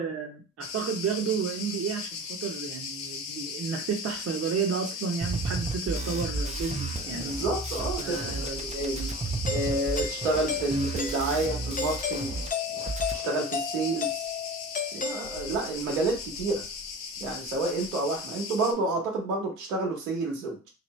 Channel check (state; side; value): normal; both; correlation 0.35